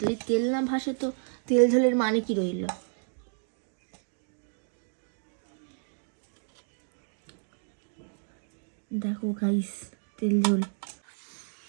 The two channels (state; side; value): silent; left; digital silence